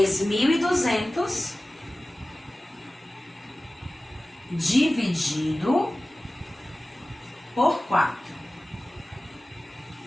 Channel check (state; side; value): normal; both; correlation 0.97